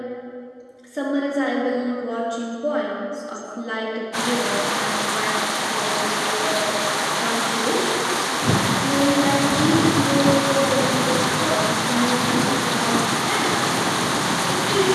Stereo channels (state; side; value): identical; both; correlation 1.00